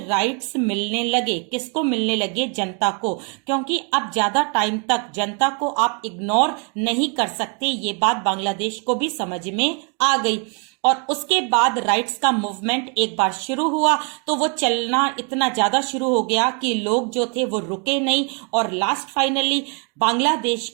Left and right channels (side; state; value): left; quieter; 37.5 dB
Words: मिलने लगे, किसको मिलने लगे, जनता को, क्योंकि अब ज्यादा टाइम तक जनता को आप इग्नोर नहीं कर सकते, ये बात बांग्लादेश को भी समझ में आ गई। और उसके बाद राइट्स का मूवमेंट एक बार शुरू हुआ तो वो चलना इतना ज्यादा शुरू हो गया कि लोग जो थे वो रुके नहीं, और लास्ट फाइनली बांग्लादेश